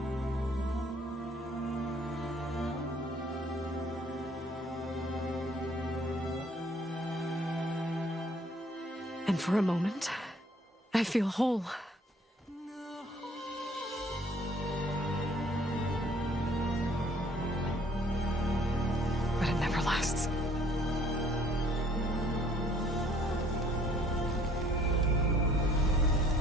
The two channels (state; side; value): normal; both; correlation 0.59